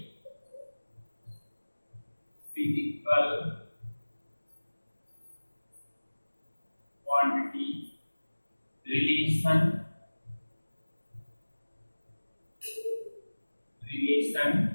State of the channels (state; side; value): inverted; both; correlation -1.00